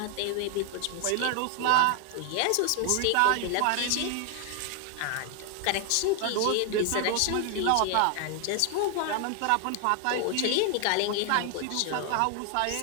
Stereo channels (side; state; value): both; different; correlation 0.00